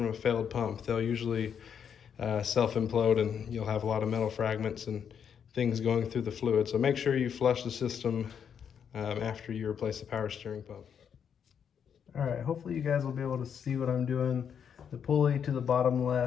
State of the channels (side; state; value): right; quieter; 7.7 dB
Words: a failed pump. They'll usually self-implode and you'll have a lot of metal fragments and things going through the fluid. So make sure you flush the system after you replace the power steering pump. All right, hopefully you guys will be able to see what I'm doing. The pulley to the bottom